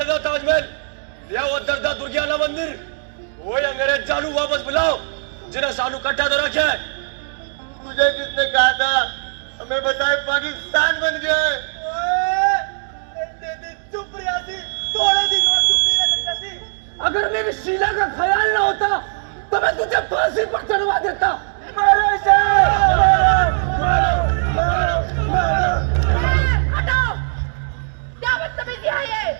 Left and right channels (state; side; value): silent; left; digital silence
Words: ताजमहल, या वो दर्दा दुर्गियाना मंदिर। ओए अंग्रेज चालू वापस बुलाओ, जिन्हें सानू कट्टा तो रखे। तुझे किसने कहा था हमें बताए पाकिस्तान बन गया है? चुप रियासी, थोड़े दिन और चुप नहीं रह सकता सी। अगर मेरी शीला का ख्याल ना होता तो मैं तुझे फांसी पर चढ़वा देता। मारो इसे, मारो। हटाओ, क्या बदतमीजी है ये?